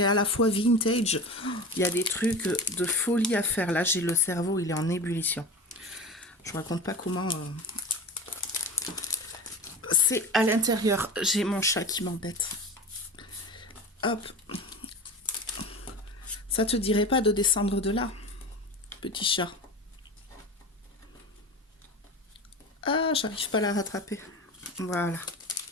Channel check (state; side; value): normal; both; correlation 0.30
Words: à la fois vintage. Il y a des trucs de folie à faire. Là, j'ai le cerveau, il est en ébullition. Je vous raconte pas comment... C'est à l'intérieur. J'ai mon chat qui m'embête. Hop. Ça te dirait pas de descendre de là, petit chat? Ah, j'arrive pas à la rattraper. Voilà.